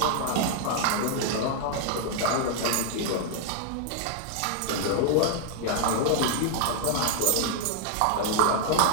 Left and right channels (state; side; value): different; both; correlation 0.00